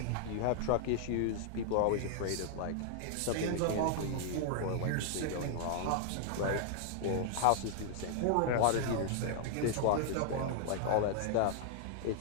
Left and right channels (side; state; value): both; different; correlation -0.01